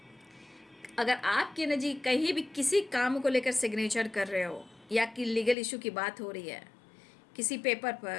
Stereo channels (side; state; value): right; drops out; at 5.6 s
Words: अगर आपकी एनर्जी कहीं भी किसी काम को लेकर सिग्नेचर कर रहे हो, या कि लीगल इशू की बात हो रही है, किसी पेपर